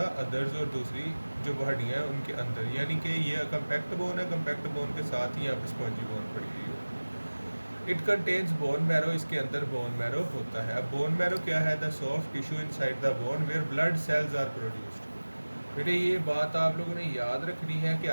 others, और दूसरी जो हड्डियाँ हैं उनके अंदर, यानी कि ये कम्पैक्ट बोन है, कम्पैक्ट बोन के साथ ही यहाँ पे स्पॉन्जी बोन पड़ी हुई है। इट कंटेन्स बोन मैरो, इसके अंदर बोन मैरो होता है। अब बोन मैरो क्या है, the soft tissue inside the bone where blood cells are produced. बेटे ये बात आप लोगों ने याद रखनी है कि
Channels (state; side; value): inverted; both; correlation -1.00